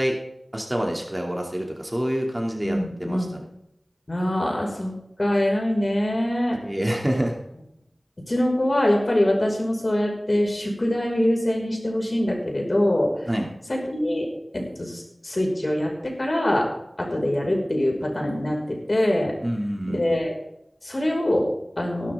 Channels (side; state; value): both; normal; correlation 0.98